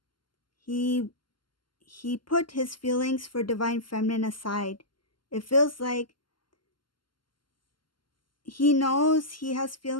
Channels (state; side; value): late; right; 0.72 ms